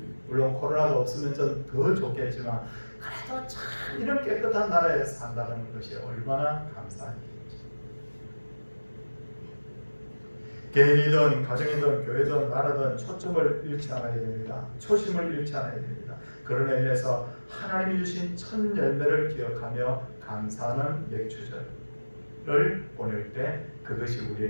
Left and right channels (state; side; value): inverted; both; correlation -1.00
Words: 물론 코로나가 없으면 좀 더 좋겠지만 그래도 참 이런 깨끗한 나라에 산다는 것이 얼마나 감사한 일인지. 개인이든 가정이든 교회든 나라든 초점을 잃지 않아야 됩니다. 초심을 잃지 않아야 됩니다. 그런 의미에서 하나님이 주신 첫 열매를 기억하며 감사하는 맥주절을 보낼 때 그것이